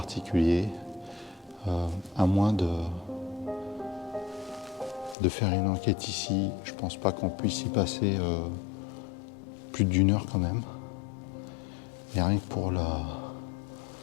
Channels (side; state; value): right; drops out; at 5.2 s